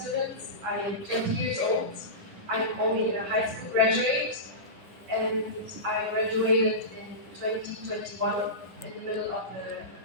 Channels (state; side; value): late; left; 10 ms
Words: I am 20 years old. I'm only a high school graduate, and I graduated in 2021 in the middle of the